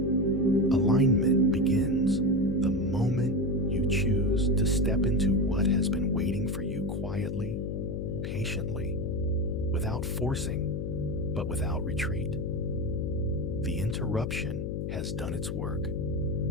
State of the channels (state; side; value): noise; left; hum, 3 dB below the sound